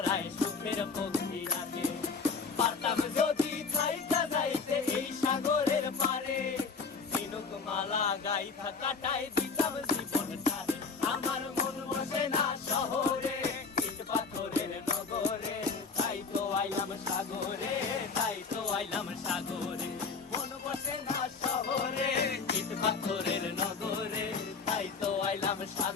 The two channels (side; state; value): right; quieter; 4.9 dB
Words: সুখের পক্ষী ডাকে। পারতাম যদি থাইকা যাইতে এই সাগরের পারে, ঝিনুক মালা গাইথা কাটাই দিতাম জীবনটারে। আমার মন বসে না শহরে, ইট পাথরের নগরে, তাই তো আইলাম সাগরে, তাই তো আইলাম সাগরে। মন বসে না শহরে, ইট পাথরের নগরে, তাই তো আইলাম